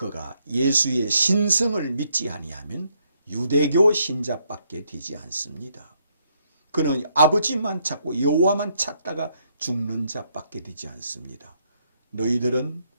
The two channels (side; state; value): both; inverted; correlation -0.73